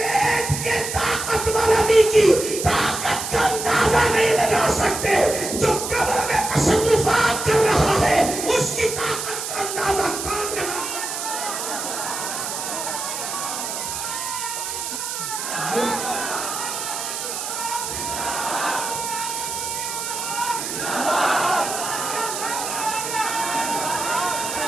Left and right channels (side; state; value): right; noise; hiss, 5 dB below the sound